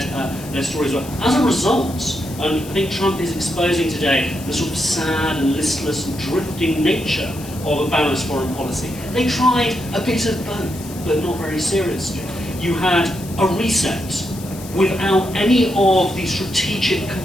their stories were. As a result, and I think Trump is exposing today the sort of sad and listless and drifting nature of a balanced foreign policy. They tried a bit of both, but not very seriously. You had a reset without any of the strategic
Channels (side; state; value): left; noise; hiss, 16 dB below the sound